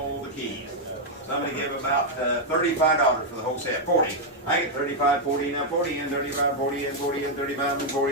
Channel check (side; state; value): both; normal; correlation -0.01